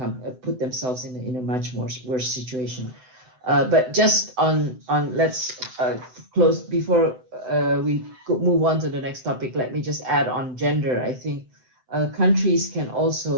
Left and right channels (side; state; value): left; late; 7.9 ms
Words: put themselves in a much worse situation. But just on let's close before we move on to the next topic. Let me just add on gender. I think countries can